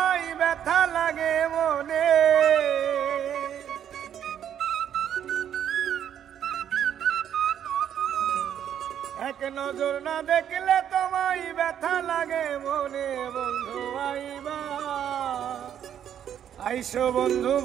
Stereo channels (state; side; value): quieter; left; 9.6 dB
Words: ব্যথা লাগে মনে, এক নজর না দেখলে তোমায় ব্যথা লাগে মনে। বন্ধু আইবা আইসো বন্ধু